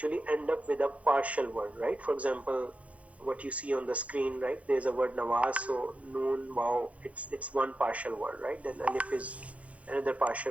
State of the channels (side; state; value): left; late; 0.065 ms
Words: end up with a partial word, right? For example, what you see on the screen, right? There's a word Nawaz, so noon, wow, it's one partial word, right? Then alif is another